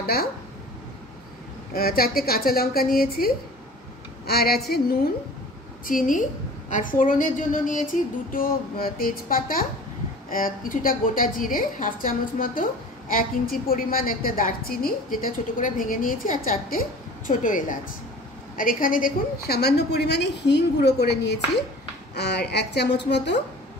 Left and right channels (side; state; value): both; normal; correlation 0.42